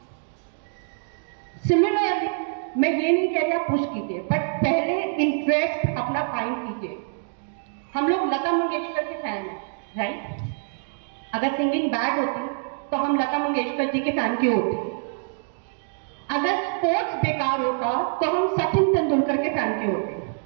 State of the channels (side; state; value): left; silent; digital silence